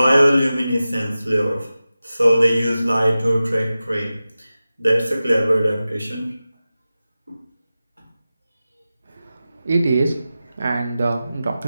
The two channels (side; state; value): both; inverted; correlation -0.95